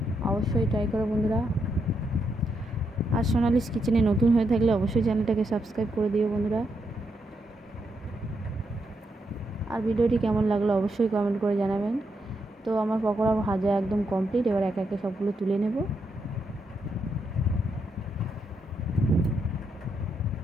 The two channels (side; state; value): both; normal; correlation 0.81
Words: অবশ্যই ট্রাই করো বন্ধুরা। আর সোনালিস কিচেনে নতুন হয়ে থাকলে অবশ্যই চ্যানেলটাকে সাবস্ক্রাইব করে দিও বন্ধুরা। আর ভিডিওটি কেমন লাগলো অবশ্যই কমেন্ট করে জানাবেন। তো আমার পকোড়া ভাজা একদম কমপ্লিট। এবার একে একে সবগুলো তুলে নেব।